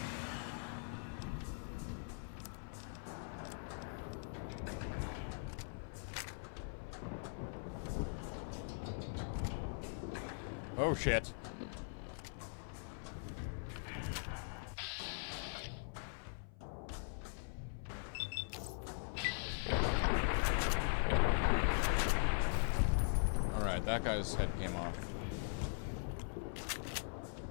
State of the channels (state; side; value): silent; right; 50 dB below the other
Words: Oh, shit. Alright, that guy's head came off.